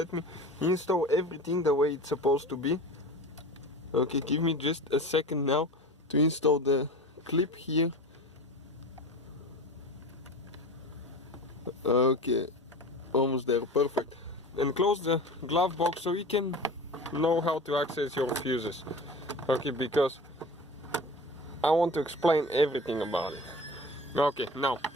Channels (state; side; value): normal; both; correlation 0.34